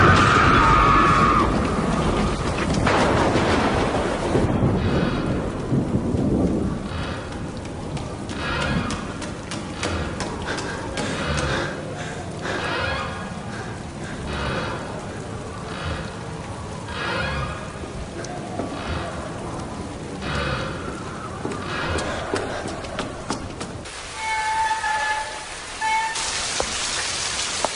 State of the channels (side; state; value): both; identical; correlation 1.00